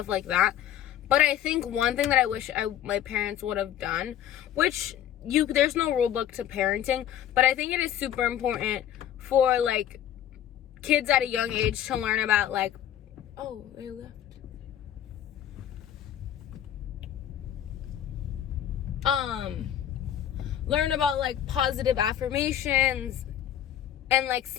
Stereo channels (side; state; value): right; quieter; 11.0 dB